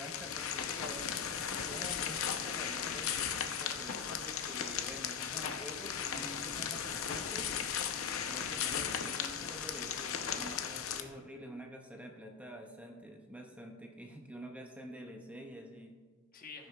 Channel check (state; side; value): quieter; right; 6.8 dB